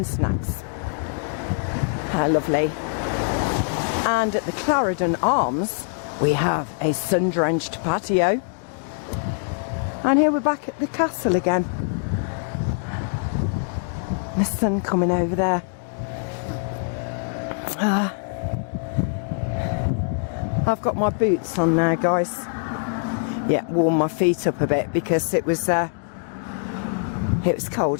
snacks. How lovely. And at the Clarendon Arms, we have a sun-drenched patio. And here we're back at the castle again. The sun coming over there. I've got my boots on now, guys. Yeah, warm my feet up a bit because it was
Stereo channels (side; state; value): right; silent; digital silence